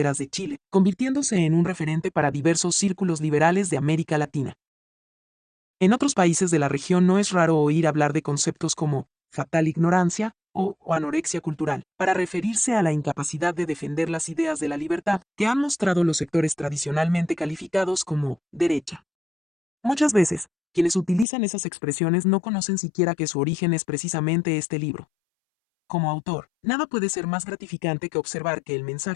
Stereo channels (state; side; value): drops out; right; at 21.2 s